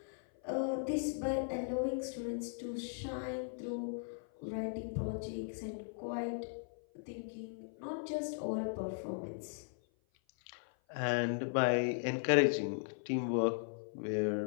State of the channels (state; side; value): silent; right; 53 dB below the other